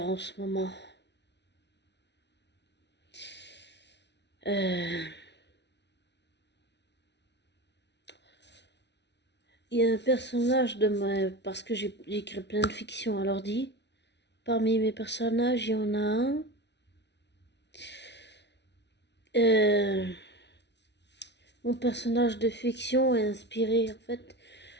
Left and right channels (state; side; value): late; right; 0.50 ms